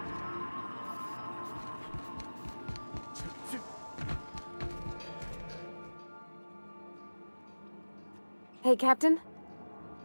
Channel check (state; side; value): inverted; both; correlation -1.00